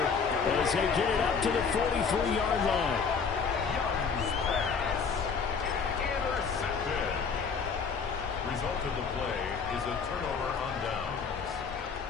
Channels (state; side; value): quieter; right; 5.7 dB